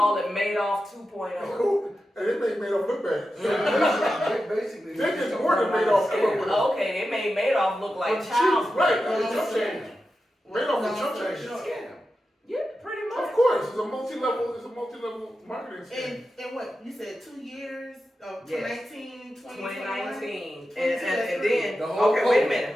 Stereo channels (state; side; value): normal; both; correlation 0.91